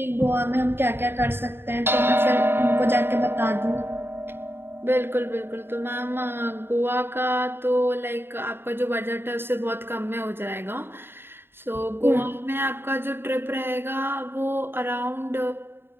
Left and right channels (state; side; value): late; left; 0.11 ms